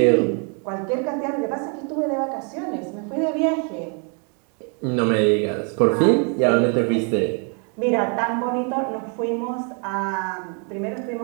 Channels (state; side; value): quieter; left; 38.8 dB